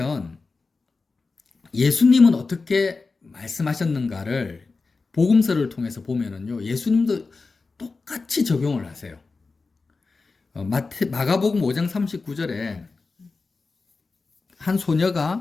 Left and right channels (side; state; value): right; quieter; 4.1 dB